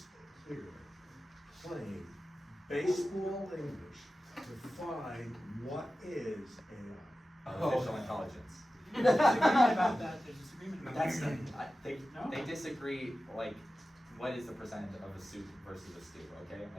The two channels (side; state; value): both; normal; correlation 0.94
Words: clear, plain, baseball English, define what is AI? Artificial intelligence. There's disagreement about that. There's disagreement about That's that. they disagree, like, what is the percentage of a soup versus a stew, okay?